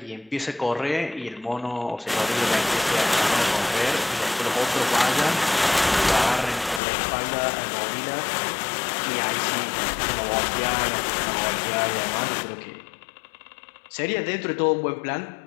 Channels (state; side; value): drops out; right; at 6.8 s